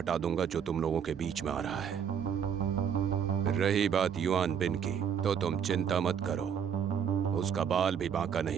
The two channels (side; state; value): left; quieter; 7.9 dB